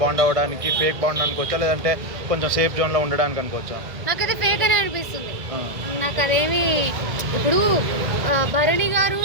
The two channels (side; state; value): left; late; 2.0 ms